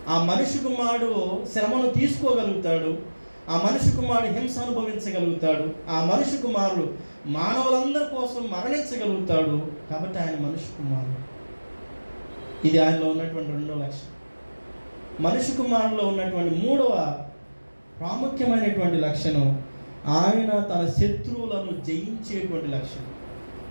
ఆ మనుష్య కుమారుడు శ్రమను తీసుకోగలుగుతాడు, ఆ మనుష్య కుమారుడు హింస అనుభవించగలుగుతాడు, ఆ మనుష్య కుమారుడు మానవులందరి కోసం మరణించగలుగుతాడు. కాబట్టి ఆయన మనుష్య కుమారుడు. ఇది ఆయనలో ఉన్నటువంటి 2వ లక్షణం. మనుష్య కుమారులో ఉన్నటువంటి 3వ ప్రాముఖ్యమైనటువంటి లక్షణం, ఆయన తన శత్రువులను జయించేటువంటి లక్షణం.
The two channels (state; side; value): inverted; both; correlation -1.00